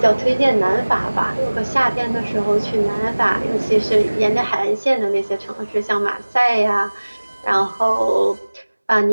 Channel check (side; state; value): both; inverted; correlation -1.00